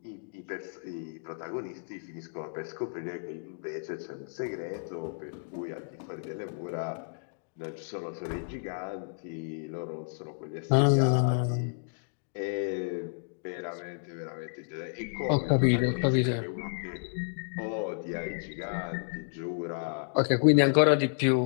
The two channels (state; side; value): silent; right; digital silence